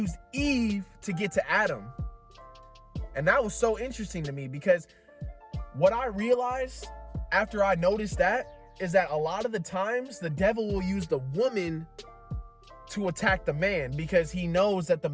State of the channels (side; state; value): both; identical; correlation 1.00